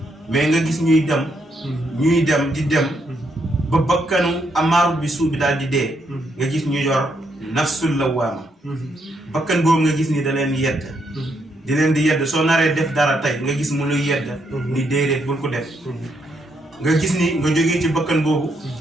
mais nga gis ñuy dem di dem ba bakkanu amaaru bi suu bi daal di dee nga gis ñu yor nafsul lawaama bakkan boobu nga gis ni da leen yedd di leen di yedd soo naree def dara tey nga gis mu luy yedd ni déedéet bul ko def nga gis ni nga jógee ci bakkan boobu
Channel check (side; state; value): both; normal; correlation 0.76